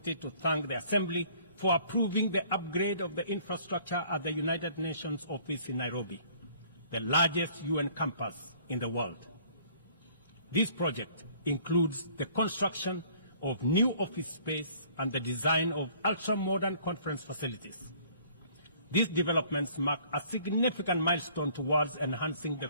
to thank the Assembly for approving the upgrade of the infrastructure at the United Nations office in Nairobi, the largest UN campus in the world. This project includes the construction of new office space and the design of ultra-modern conference facilities. These developments mark a significant milestone towards enhancing the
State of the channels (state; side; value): inverted; both; correlation -0.56